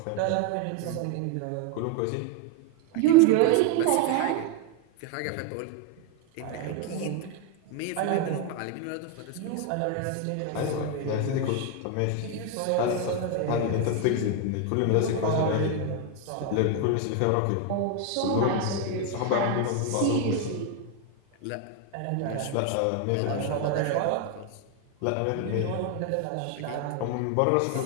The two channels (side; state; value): both; different; correlation 0.01